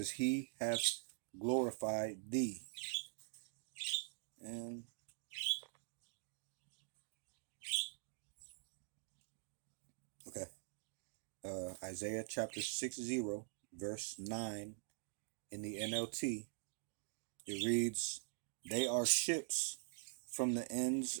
he hath glorified thee. And okay, Isaiah chapter 60, verse 9 in the NLT, it reads, they are ships from the ends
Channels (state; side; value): silent; left; digital silence